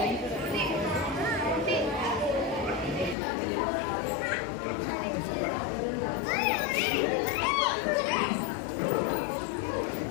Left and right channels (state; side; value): drops out; right; at 3.2 s